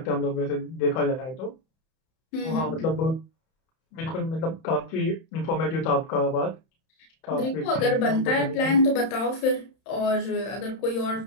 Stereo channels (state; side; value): late; right; 31 ms